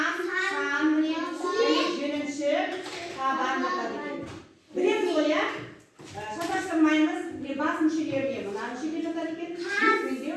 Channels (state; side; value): identical; both; correlation 1.00